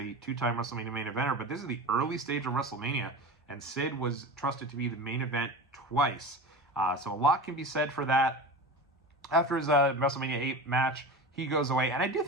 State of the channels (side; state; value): both; normal; correlation 0.29